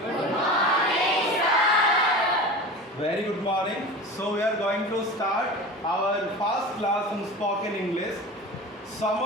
Good morning, sir. Very good morning. So we are going to start our first class in spoken English. Some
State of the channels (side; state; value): both; normal; correlation 0.32